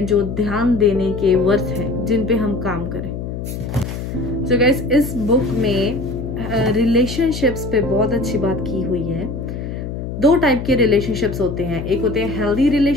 जो ध्यान देने के वर्थ हैं, जिन पे हम काम करें। So guys, इस बुक में रिलेशनशिप्स पे बहुत अच्छी बात की हुई है। 2 टाइप के रिलेशनशिप्स होते हैं, एक होते हैं हेल्दी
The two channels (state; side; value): noise; left; hum, 6 dB below the sound